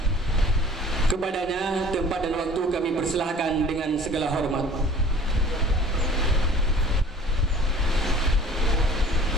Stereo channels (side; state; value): both; normal; correlation 0.48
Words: Kepadanya tempat dan waktu kami persilahkan dengan segala hormat.